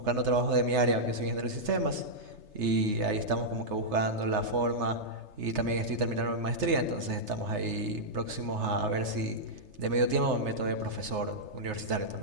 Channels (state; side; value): late; left; 3.3 ms